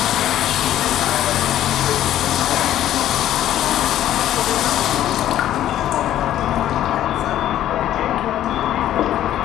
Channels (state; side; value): quieter; right; 12.3 dB